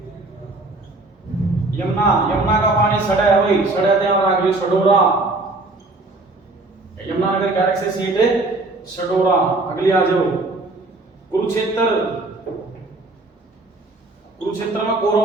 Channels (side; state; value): left; quieter; 3.1 dB